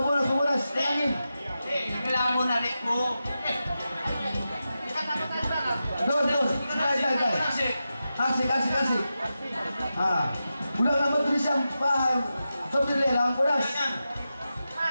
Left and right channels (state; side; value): inverted; both; correlation -0.91